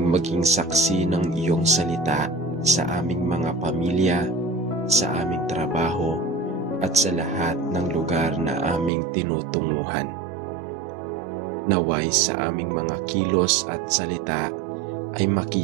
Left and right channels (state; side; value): drops out; left; at 8.9 s